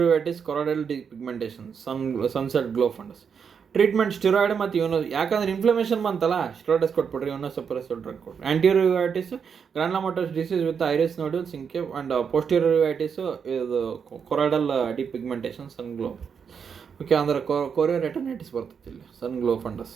uveitis choroidal pigmentation, sunset glow fundus. Treatment steroid ಮತ್ತು ಯಾಕಂದ್ರೆ ಇನ್ಫ್ಲಮೇಷನ್ ಬಂತಲ್ಲ, ಸ್ಟೆರಾಯ್ಡ್ಸ್ ಕೊಟ್ಬಿಡ್ರಿ, ಸಪ್ರೆಸರ್ ಡ್ರಗ್ ಕೊಟ್ರಿ. Anterior uveitis granulomatous disease with iris nodule synechiae and posterior uveitis ಇದು ಕೊರಾಯ್ಡಲ್ ಡಿಪಿಗ್ಮೆಂಟೇಷನ್, ಸನ್ ಗ್ಲೋ. ಓಕೆ, ಅಂದ್ರೆ ಕೊರಿಯೋ ರೆಟನೈಟಿಸ್ ಬರ್ತೈತಿ ಇಲ್ಲಿ, sun glow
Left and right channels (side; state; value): left; quieter; 6.7 dB